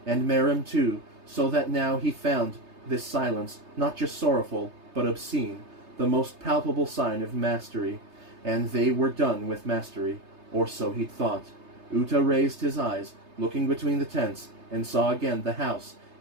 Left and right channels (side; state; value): left; late; 3.3 ms